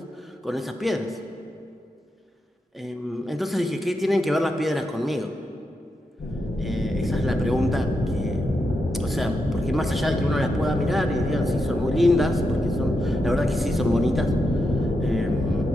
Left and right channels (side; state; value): both; normal; correlation 0.85